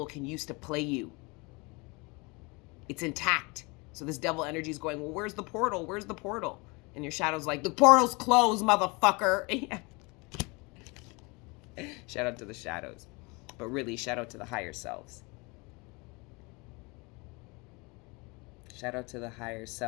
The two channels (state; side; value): quieter; right; 27.4 dB